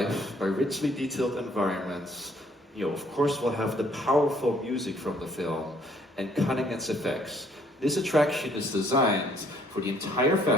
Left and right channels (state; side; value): normal; both; correlation 0.63